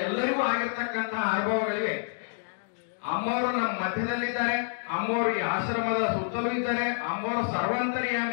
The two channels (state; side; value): silent; right; digital silence